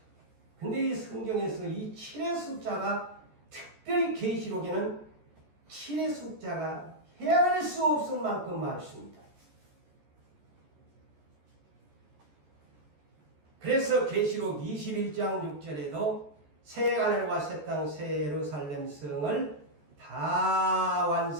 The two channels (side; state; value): left; late; 14 ms